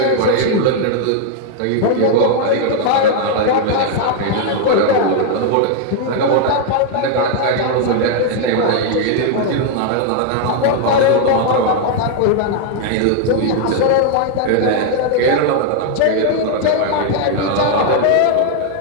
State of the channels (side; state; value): both; different; correlation 0.00